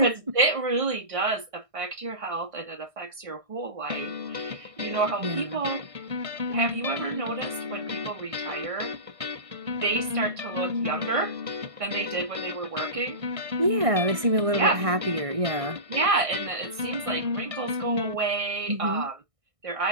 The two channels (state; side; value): late; left; 1.6 ms